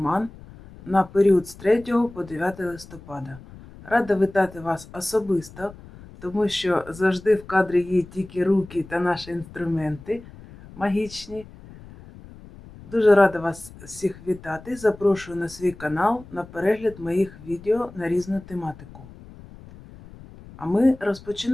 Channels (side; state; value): left; noise; rumble, 19 dB below the sound